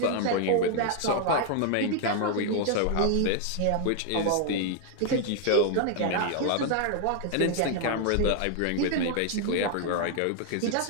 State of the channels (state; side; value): different; both; correlation 0.00